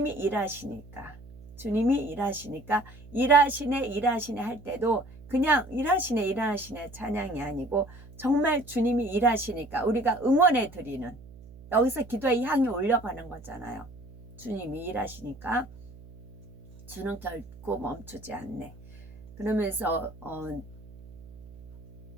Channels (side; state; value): right; noise; hum, 19 dB below the sound